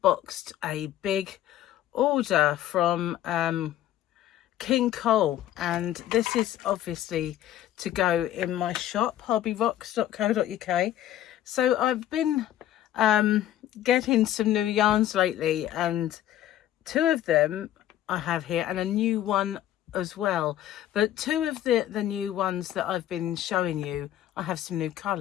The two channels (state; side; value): quieter; right; 12.4 dB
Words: a big order from King Cole, and this is obviously to go in my shop, hobbyrocks.co.uk. So I've been getting some new yarns lately, and two of them I have here and a new one as well, but two of the new ones that I've been showing you, I have some new